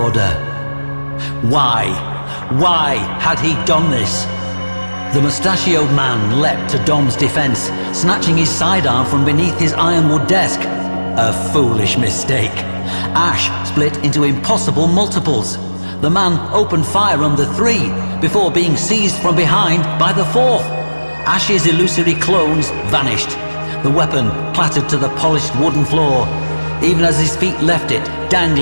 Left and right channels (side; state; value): both; inverted; correlation -1.00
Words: order. Why? Why had he done this? The mustachioed man leapt to Dom's defense, snatching his sidearm from beneath his ironwood desk. A foolish mistake. Ash split into impossible multiples. The man opened fire on the three before being seized from behind by the fourth. Ash's illusory clones vanished. The weapon clattered to the polished wooden floor, even as his feet left it,